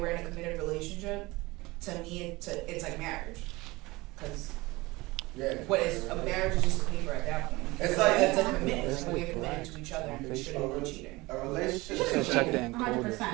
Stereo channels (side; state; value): left; quieter; 21.8 dB